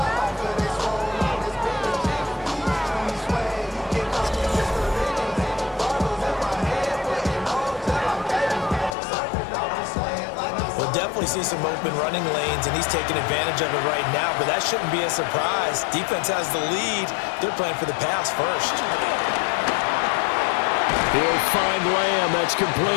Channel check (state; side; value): drops out; right; at 9.0 s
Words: We'll definitely see some open running lanes, and he's taking advantage of it right now, but that shouldn't be a surprise. Defense has the lead. They're playing for the pass first. He'll find Lamb. That's